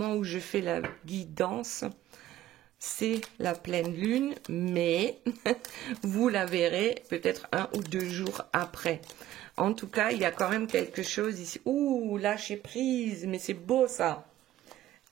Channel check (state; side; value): quieter; left; 13.9 dB